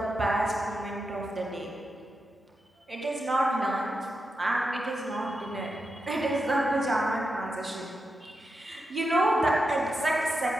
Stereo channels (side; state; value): both; normal; correlation 0.87